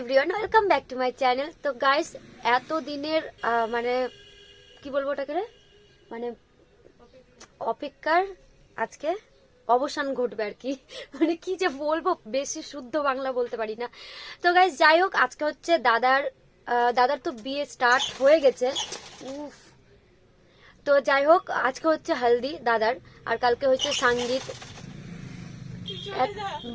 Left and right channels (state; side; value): identical; both; correlation 1.00